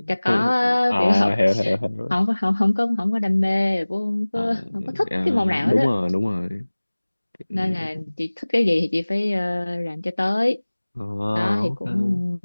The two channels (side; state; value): both; inverted; correlation -1.00